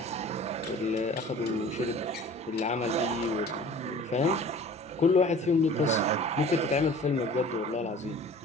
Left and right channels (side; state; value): both; normal; correlation 0.45